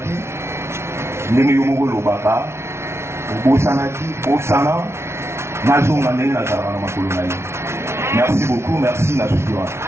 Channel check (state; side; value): late; left; 0.13 ms